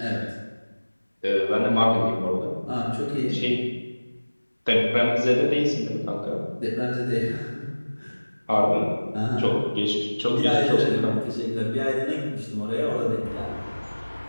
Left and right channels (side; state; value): both; inverted; correlation -1.00